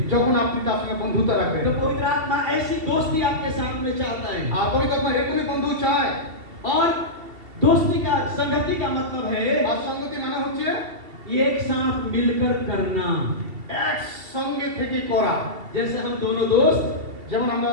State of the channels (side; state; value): left; late; 2.7 ms